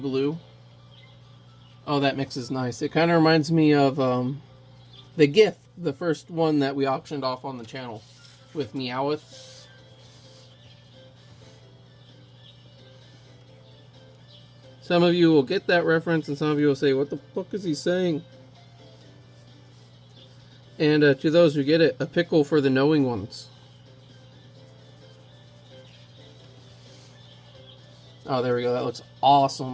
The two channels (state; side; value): identical; both; correlation 1.00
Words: Oh, that mix is nice. It kind of reminds me of the GIF, the first one that we auctioned off on the channel with Meowth. Some of you will get that reference, and some of you will say, what the fuck is he saying? And to those who get it, a pickle for the knowing ones. Oh, there we go. That looks